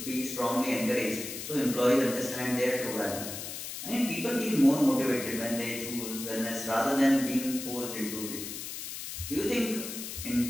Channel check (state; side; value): noise; left; hiss, 8 dB below the sound